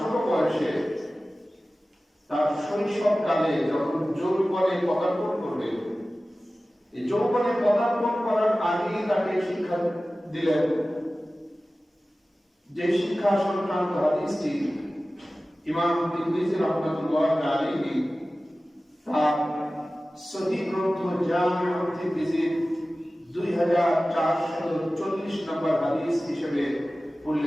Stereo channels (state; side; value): normal; both; correlation 0.96